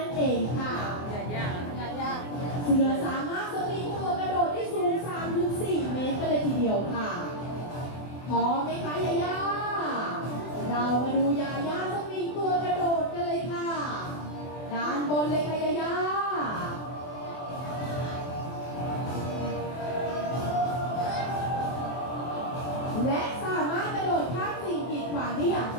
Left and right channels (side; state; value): right; late; 24 ms